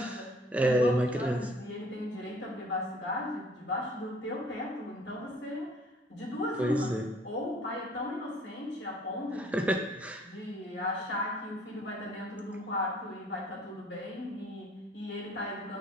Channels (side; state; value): both; normal; correlation 0.56